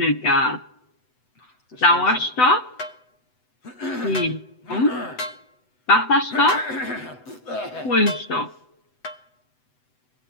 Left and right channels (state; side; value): late; right; 7.9 ms